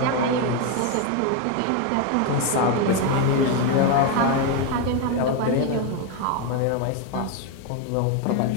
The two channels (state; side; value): different; both; correlation 0.02